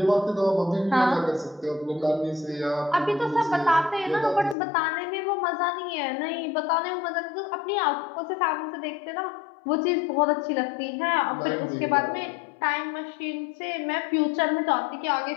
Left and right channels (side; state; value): right; drops out; at 4.5 s